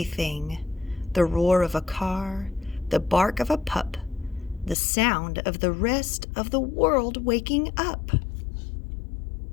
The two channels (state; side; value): drops out; right; at 4.8 s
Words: The roar of a car, the bark of a pup, the sound of the rest of the world waking up.